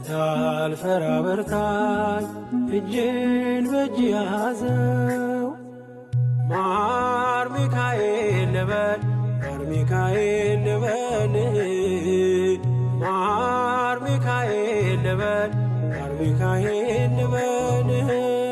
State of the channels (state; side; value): identical; both; correlation 1.00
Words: በርታኝ እጄን በእጅ ያዘው ማር ሚካኤል ልበል ማር ሚካኤል ልበል ማር ሚካኤል ልበል ማር ሚካኤል ልበል